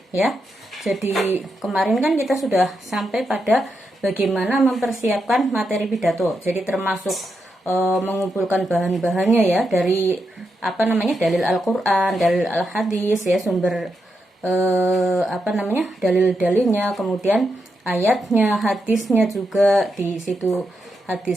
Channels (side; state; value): both; normal; correlation 0.84